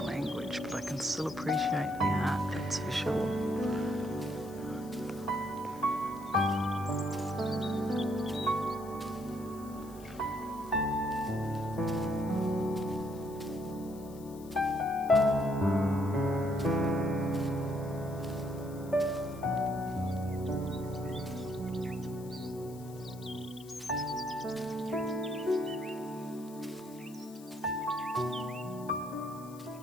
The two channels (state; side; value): noise; left; hiss, 21 dB below the sound